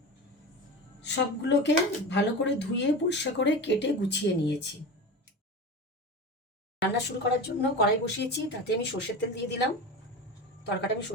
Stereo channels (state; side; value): normal; both; correlation 0.27